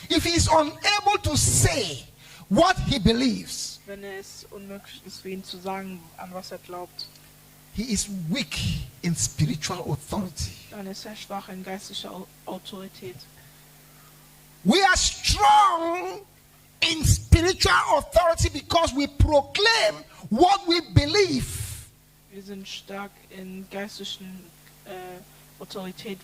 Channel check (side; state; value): both; identical; correlation 1.00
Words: if he is unable to say what he believes, wenn es unmöglich ist für ihn zu sagen, an was er glaubt, he is weak in spiritual authority. dann ist er schwach in geistlicher Autorität. We are strong in spiritual authority because we proclaim what we believe. Wir sind stark in geistlichen Autorität,